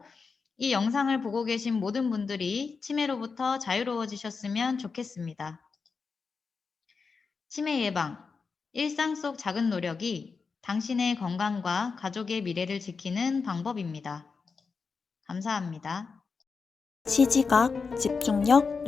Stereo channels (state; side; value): quieter; right; 5.0 dB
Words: 이 영상을 보고 계신 모든 분들이 치매로부터 자유로워지셨으면 좋겠습니다. 치매 예방, 일상 속 작은 노력이 당신의 건강과 가족의 미래를 지키는 방법입니다. 감사합니다. 시지각, 집중력,